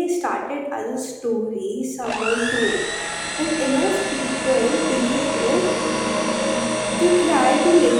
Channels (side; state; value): both; identical; correlation 1.00